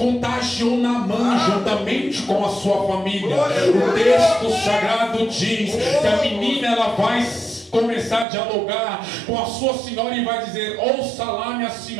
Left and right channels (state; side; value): drops out; left; at 8.2 s